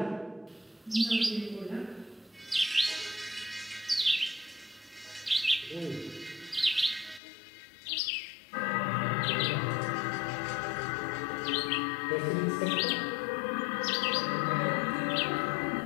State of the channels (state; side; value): drops out; right; at 7.2 s